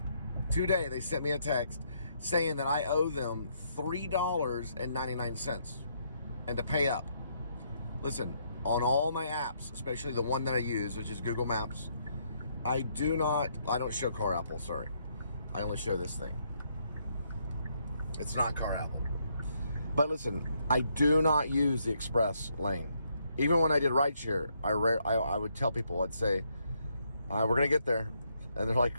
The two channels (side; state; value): both; inverted; correlation -0.74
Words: today. They sent me a text saying that I owe them $3.99 and to pay up. Listen, on all my apps, especially the one that I use, which is Google Maps, I don't show Car Apple, sorry. I only show this thing. It's not Car Apple. But listen, I do not use the express lane. Even when I did rideshare, I would tell people, I'd say, we're going to get there. And they're like,